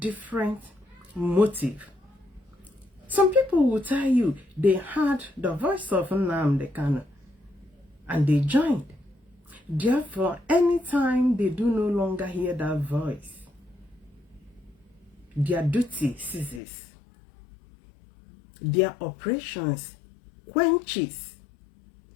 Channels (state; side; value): drops out; right; at 16.6 s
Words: motive. Some people will tell you they heard the voice of Nnamdi Kanu and they joined. Therefore, anytime they do no longer hear that voice, their duty ceases. Their operations quenches.